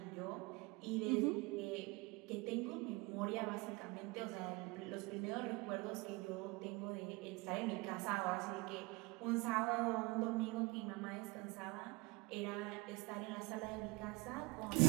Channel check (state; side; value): quieter; left; 24.9 dB